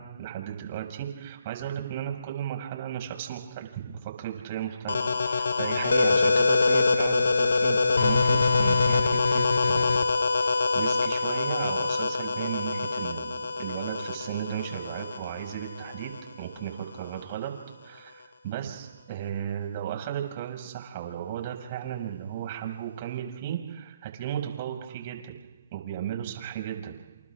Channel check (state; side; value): inverted; both; correlation -0.84